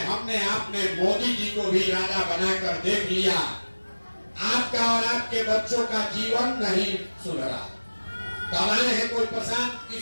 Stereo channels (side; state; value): both; inverted; correlation -1.00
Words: हमने आपने मोदी जी को भी राजा बनाकर देख लिया। आपका और आपके बच्चों का जीवन नहीं सुधरा। कब आए हैं कोई प्रशांत